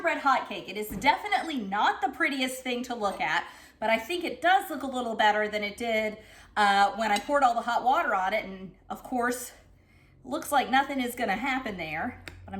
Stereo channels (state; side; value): identical; both; correlation 1.00